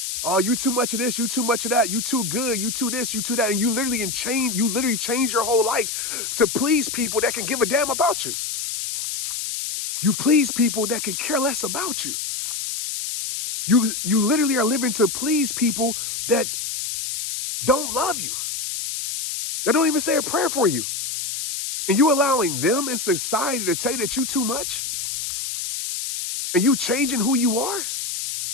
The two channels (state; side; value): noise; left; hiss, 4 dB below the sound